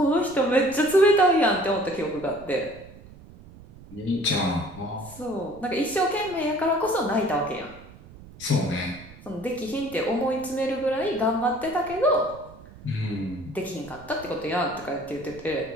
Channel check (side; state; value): right; noise; rumble, 20 dB below the sound